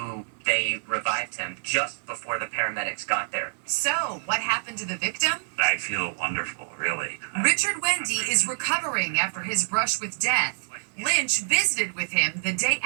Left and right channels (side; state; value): left; silent; digital silence